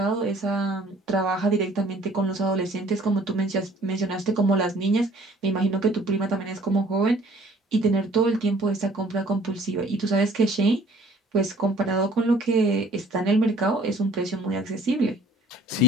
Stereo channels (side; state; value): both; normal; correlation 0.54